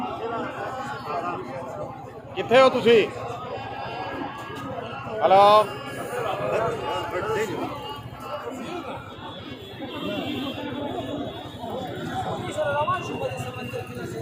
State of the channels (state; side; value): identical; both; correlation 1.00